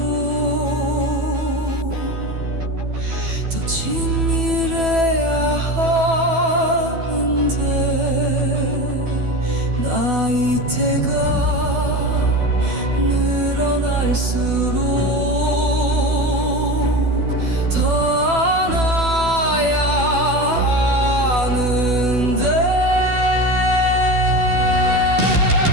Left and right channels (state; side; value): late; left; 12 ms